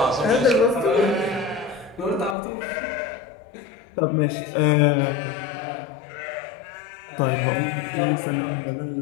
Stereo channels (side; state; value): right; drops out; at 2.4 s